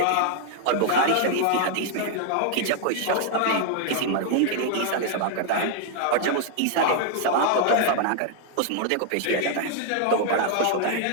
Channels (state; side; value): different; both; correlation 0.00